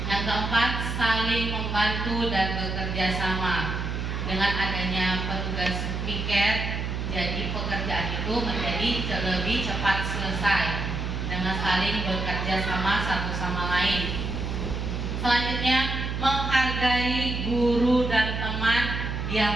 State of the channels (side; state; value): right; noise; hum, 3 dB below the sound